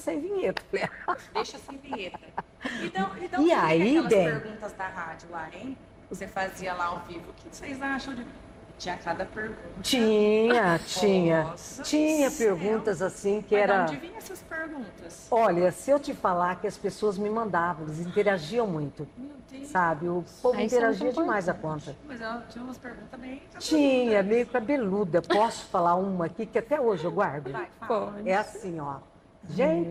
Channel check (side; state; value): both; identical; correlation 1.00